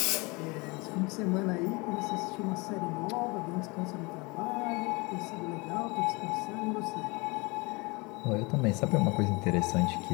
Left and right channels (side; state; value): right; quieter; 26.7 dB